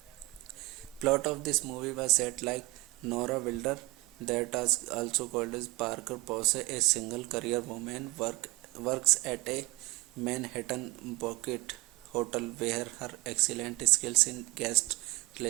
Plot of this movie was set like Nora Wilder, that is also called as Parker Posey, a single career woman, works at a Manhattan Bucket hotel where her excellent skills in guest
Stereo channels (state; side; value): quieter; left; 22.5 dB